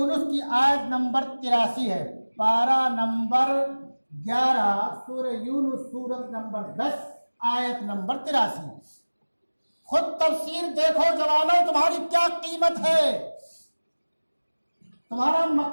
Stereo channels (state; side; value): inverted; both; correlation -1.00